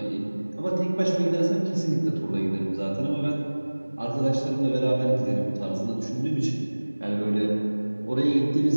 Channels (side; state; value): both; inverted; correlation -1.00